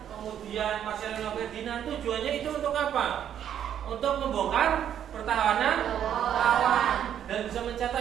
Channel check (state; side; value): quieter; left; 9.7 dB